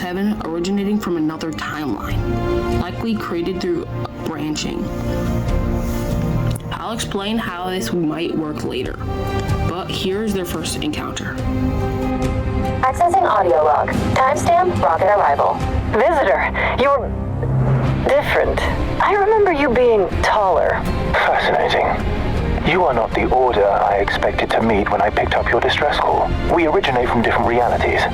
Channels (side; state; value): both; identical; correlation 1.00